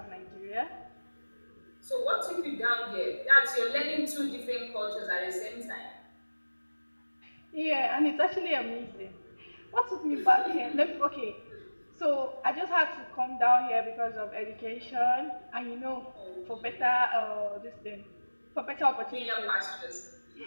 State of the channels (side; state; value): both; inverted; correlation -1.00